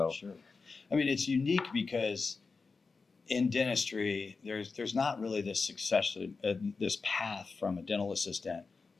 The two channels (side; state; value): right; quieter; 4.4 dB